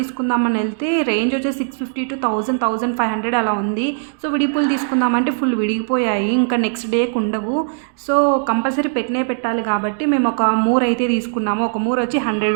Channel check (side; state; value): left; silent; digital silence